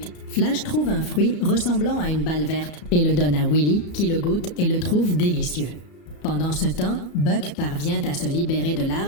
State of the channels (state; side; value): late; right; 34 ms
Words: Flash trouve un fruit ressemblant à une balle verte et le donne à Willy qui le goûte et le trouve délicieux. Pendant ce temps, Buck parvient à se libérer de